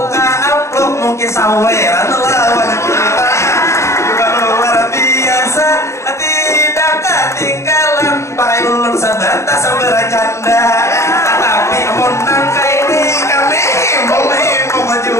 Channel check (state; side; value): late; right; 0.14 ms